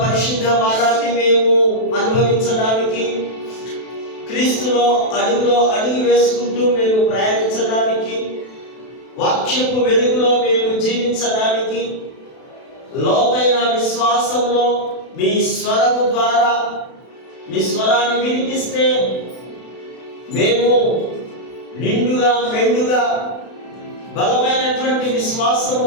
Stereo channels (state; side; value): late; right; 32 ms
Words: పరిశుద్ధ వారాన్ని మేము అనుభవించడానికి, క్రీస్తులో అడుగులో అడుగు వేసుకుంటూ మేము ప్రయాణించడానికి, వాక్యపు వెలుగులో మేము జీవించడానికి, లోతైన విశ్వాసంలో మీ స్వరము ద్వారా మీ స్వరాన్ని వినిపిస్తే మేము నిండుగా మెండుగా బలమైనటువంటి